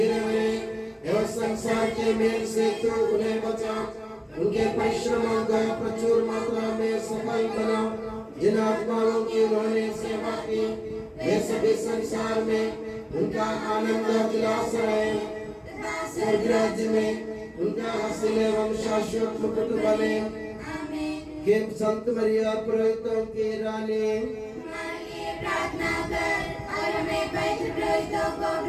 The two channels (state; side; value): identical; both; correlation 1.00